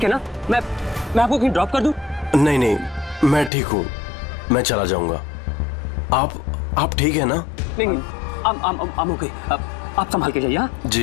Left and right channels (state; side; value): drops out; right; at 3.5 s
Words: है ना? मैं आपको कहीं ड्रॉप कर दूं? नहीं, मैं ठीक हूँ, मैं चला जाऊंगा। आप ठीक है ना? नहीं, I'm okay। आप संभाल के जाइए। हाँ